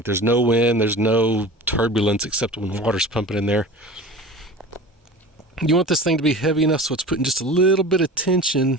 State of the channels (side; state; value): both; normal; correlation 0.36